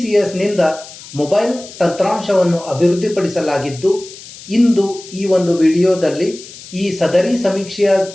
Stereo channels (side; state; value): left; noise; hiss, 17 dB below the sound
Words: ಮೊಬೈಲ್ ತಂತ್ರಾಂಶವನ್ನು ಅಭಿವೃದ್ಧಿಪಡಿಸಲಾಗಿದ್ದು, ಇಂದು ಈ ಒಂದು ವಿಡಿಯೋದಲ್ಲಿ ಈ ಸದರಿ ಸಮೀಕ್ಷೆಯ